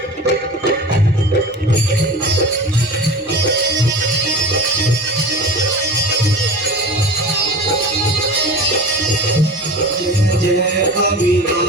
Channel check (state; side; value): normal; both; correlation 0.34